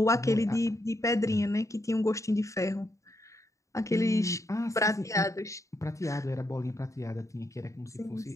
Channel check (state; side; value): late; right; 0.15 ms